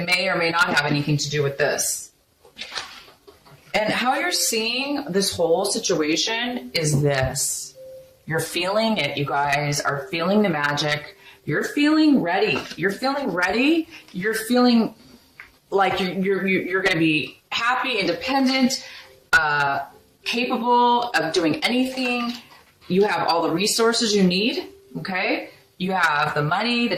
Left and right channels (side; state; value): both; identical; correlation 1.00